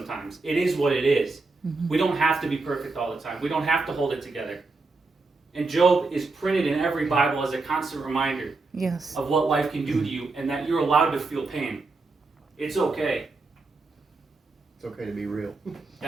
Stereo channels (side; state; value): left; quieter; 3.7 dB